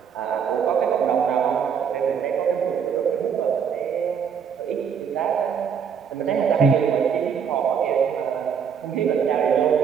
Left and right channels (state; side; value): quieter; left; 7.2 dB